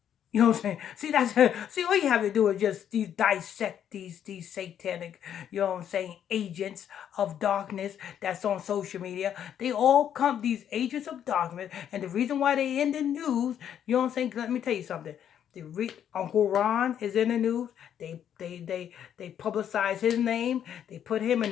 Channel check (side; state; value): right; quieter; 9.5 dB